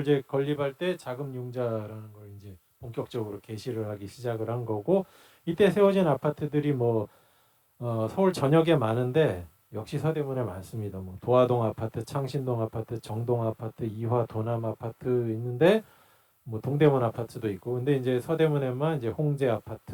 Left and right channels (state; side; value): identical; both; correlation 1.00